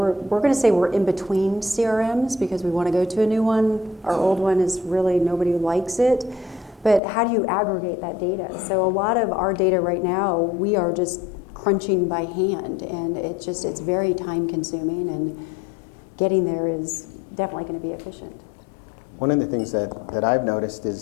going to say we're in between CRMs because we want to go to a new one. Our old one is really, nobody likes it. But how do you aggregate that data? So a lot of our data right now, we are just crunching by hand, and it's very time consuming, and getting there is definitely going to be efficient. One of the things that I've noticed is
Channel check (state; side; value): drops out; right; at 7.0 s